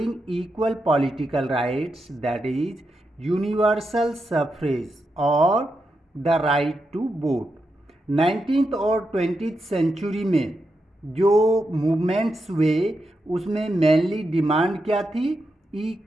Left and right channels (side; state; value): both; normal; correlation 0.86